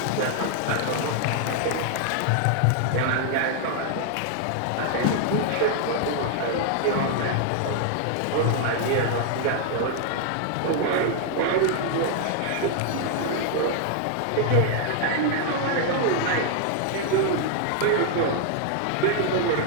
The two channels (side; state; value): both; different; correlation 0.00